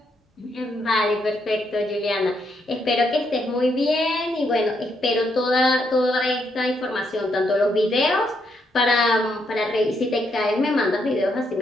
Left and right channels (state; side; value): normal; both; correlation 0.77